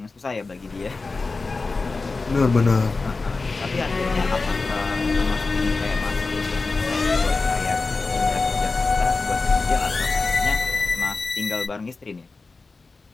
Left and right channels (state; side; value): quieter; right; 3.9 dB